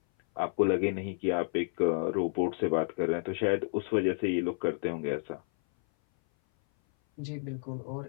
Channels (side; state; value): right; silent; 57 dB below the other